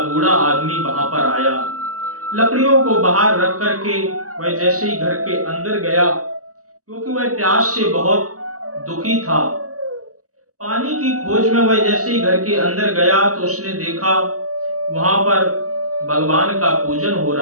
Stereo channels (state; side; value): late; left; 0.66 ms